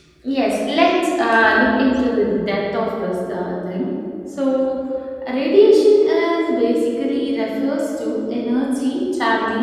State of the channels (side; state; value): both; identical; correlation 1.00